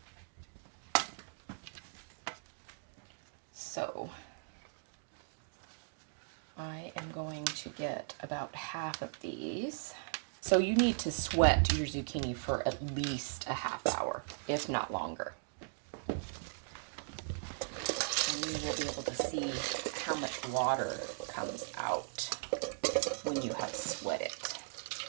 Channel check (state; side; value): silent; left; digital silence